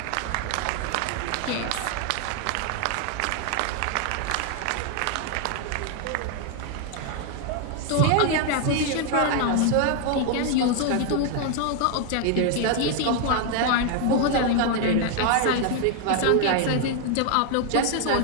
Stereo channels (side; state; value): both; different; correlation 0.00